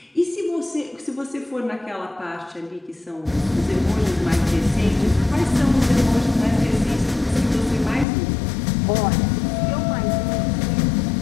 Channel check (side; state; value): right; drops out; at 8.1 s